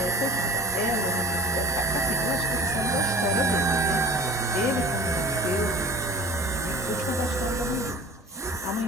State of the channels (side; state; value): both; normal; correlation 0.41